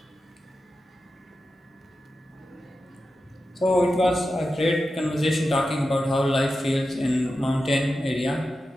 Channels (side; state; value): both; normal; correlation 0.91